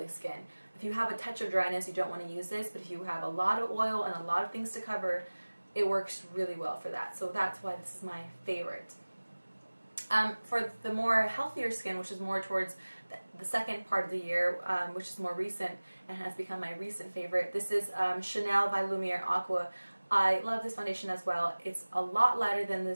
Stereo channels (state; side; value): inverted; both; correlation -1.00